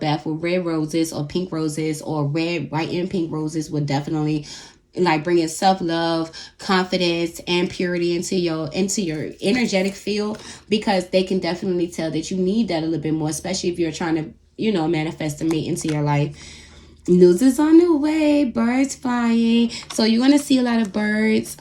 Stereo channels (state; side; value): identical; both; correlation 1.00